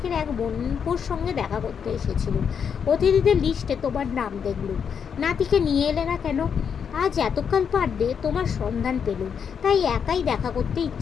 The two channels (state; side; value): quieter; right; 7.1 dB